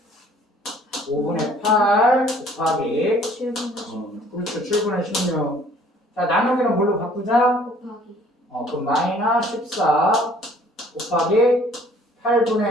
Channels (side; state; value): both; normal; correlation 0.56